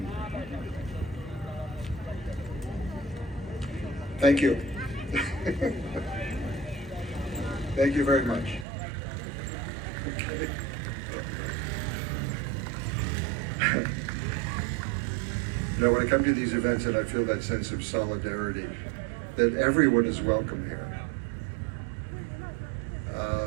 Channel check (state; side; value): drops out; left; at 8.7 s